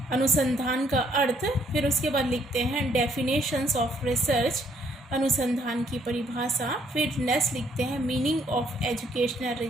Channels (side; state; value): both; normal; correlation 0.67